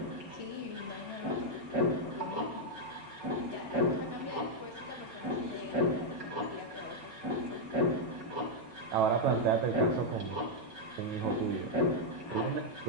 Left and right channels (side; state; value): left; late; 5.4 ms